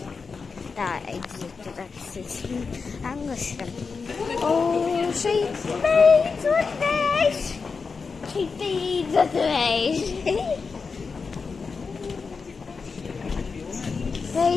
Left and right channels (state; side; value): quieter; right; 4.9 dB